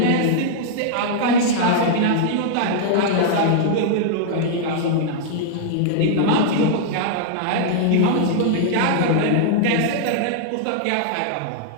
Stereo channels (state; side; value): different; both; correlation -0.01